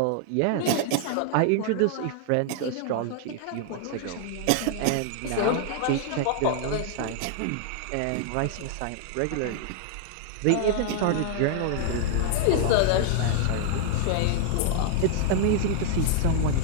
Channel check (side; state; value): both; different; correlation -0.01